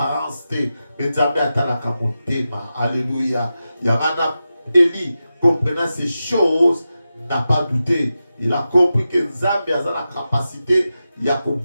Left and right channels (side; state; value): both; inverted; correlation -0.92